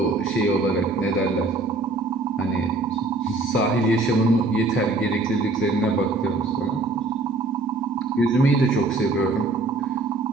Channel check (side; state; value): left; quieter; 3.1 dB